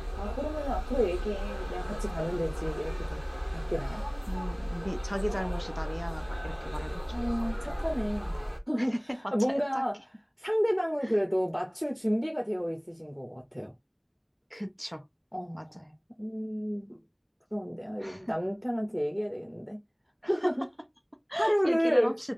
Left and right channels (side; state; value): both; identical; correlation 1.00